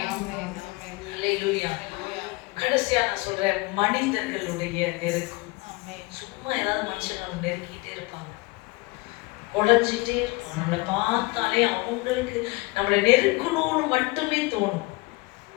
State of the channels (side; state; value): right; quieter; 24.1 dB